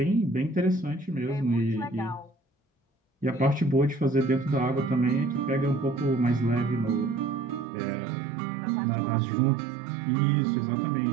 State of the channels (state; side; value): drops out; left; at 7.7 s